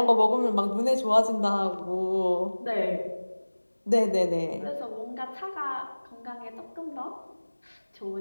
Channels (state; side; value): inverted; both; correlation -1.00